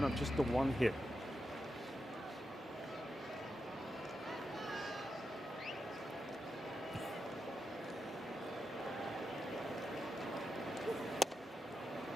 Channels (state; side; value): normal; both; correlation 0.87